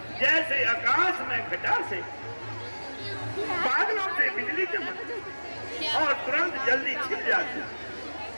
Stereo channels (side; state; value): both; inverted; correlation -1.00